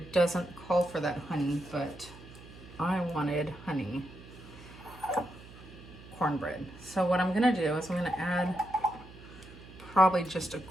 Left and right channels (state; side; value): noise; right; hum, 18 dB below the sound